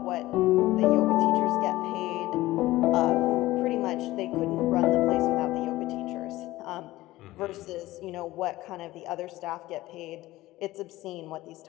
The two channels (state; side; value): quieter; right; 17.3 dB